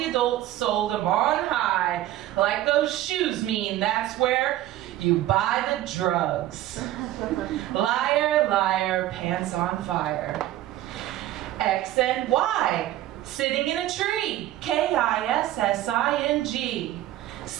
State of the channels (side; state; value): left; quieter; 14.3 dB